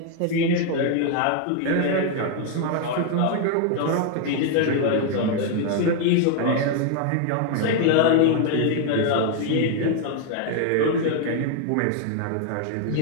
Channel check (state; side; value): different; both; correlation 0.00